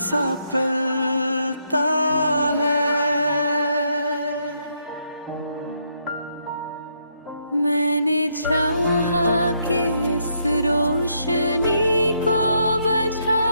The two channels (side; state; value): both; inverted; correlation -0.75